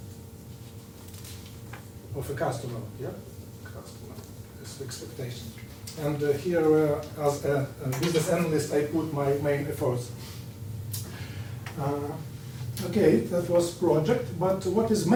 of a customer, customer expectation. And here, as a business analyst, I put my main efforts. Okay, that was project, but what is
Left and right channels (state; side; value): identical; both; correlation 1.00